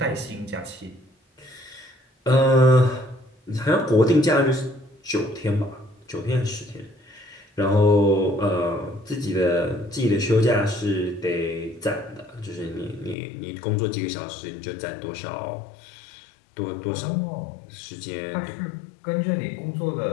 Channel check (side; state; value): right; drops out; at 13.2 s